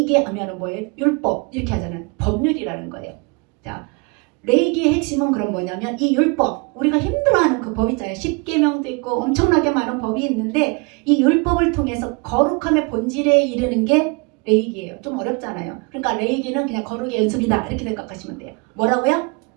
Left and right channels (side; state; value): left; quieter; 30.5 dB